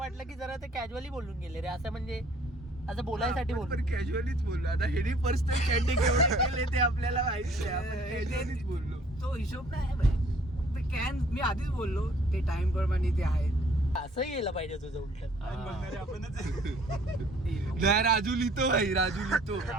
की जरा ते कॅज्युअली बोलून गेले रे. असं म्हणजे असं बोलायसाठी आपण बोललो. पण कॅज्युअलीच बोललो. आता हेनी पर्सनल चॅटिंग एवढे केले ते आपल्याला माहिती आहे. आपण कॅज्युअलीच बोललो. तो हिशोब नाही भाई. ते कॅन मी आधीच बोललो ते टाइम प्रमाणे ते आहे. असं यायला पाहिजे तुझं उलट. नाही, राजू लिहितो भाई, राजू लिहितो.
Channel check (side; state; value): both; normal; correlation 0.58